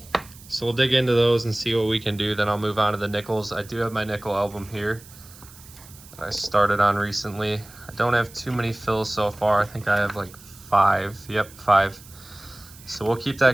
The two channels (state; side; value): noise; right; hiss, 21 dB below the sound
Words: we'll dig into those and see what we can do. Then I'll move on to the nickels. I do have my nickel album here I started on recently. I don't have too many fills so far. I think I have like 5. Yep, 5. So we'll keep